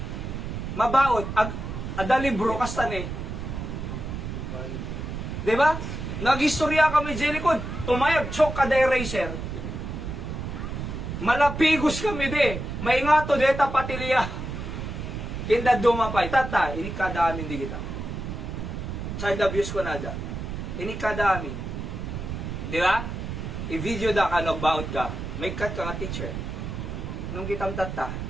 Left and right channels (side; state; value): right; noise; rumble, 6 dB below the sound